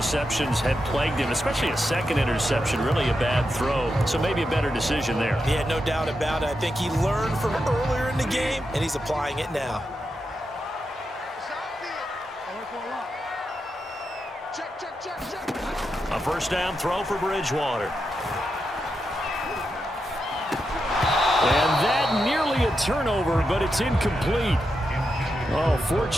had plagued him, especially a second interception, really a bad throw. So maybe a better decision there. Yeah, no doubt about it. I think he learned from earlier in the game, and he's applying it now. A first down throw for Bridgewater. And that nearly a turnover, but it's incomplete. Oh,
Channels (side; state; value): both; normal; correlation 0.86